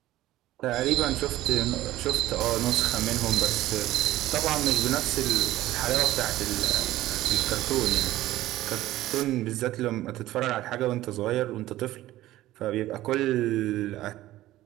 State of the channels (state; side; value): quieter; left; 15.5 dB